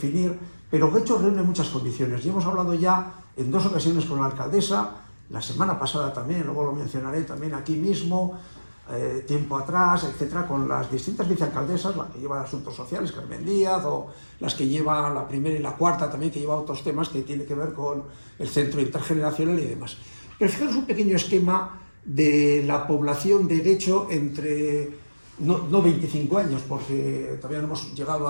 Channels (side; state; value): both; inverted; correlation -1.00